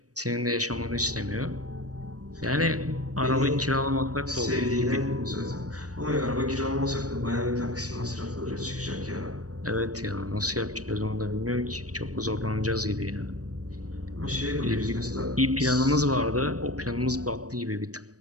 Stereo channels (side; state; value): left; late; 0.67 ms